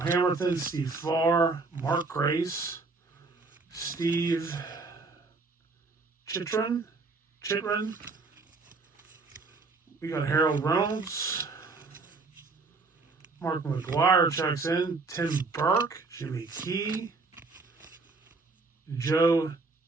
Hamilton, Steve Farr, Mark Grace, Steve Chitrin. We got Harold Reynolds. Mark McGuire checks in. Tim Burke, Jimmy Key, Joe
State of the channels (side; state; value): left; quieter; 3.9 dB